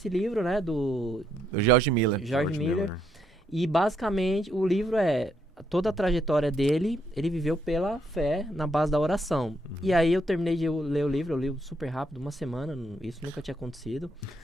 livro, né, do O George Miller. George Miller. E basicamente o livro toda a trajetória dele, ele viveu pela fé, na base da oração. E aí eu terminei de ler o livro, eu li super rápido, uma semana, isso nunca tinha acontecido.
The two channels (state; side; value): normal; both; correlation 0.75